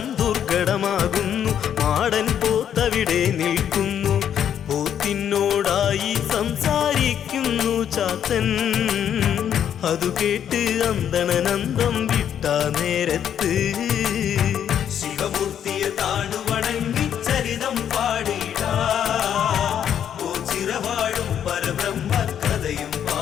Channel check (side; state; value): right; quieter; 9.3 dB